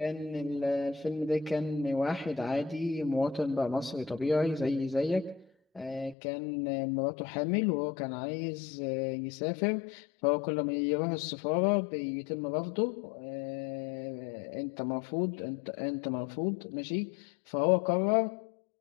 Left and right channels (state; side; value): drops out; right; at 6.2 s